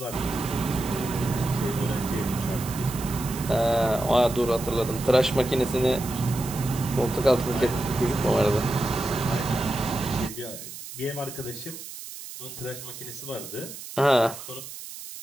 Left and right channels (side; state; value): right; noise; hiss, 12 dB below the sound